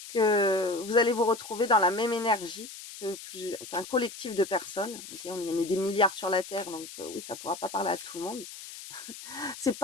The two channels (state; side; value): noise; left; hiss, 13 dB below the sound